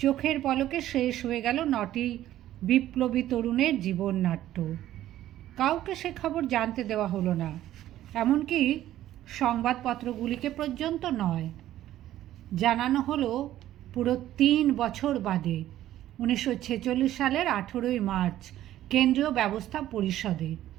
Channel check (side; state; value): left; quieter; 13.2 dB